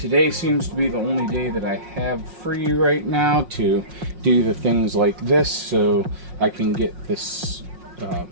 seems to be the only day that I have free right now to do the things like this, so I can get this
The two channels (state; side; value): late; left; 5.5 ms